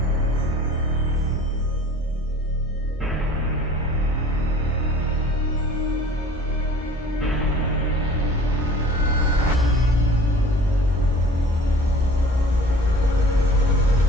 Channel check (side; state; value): both; normal; correlation 0.47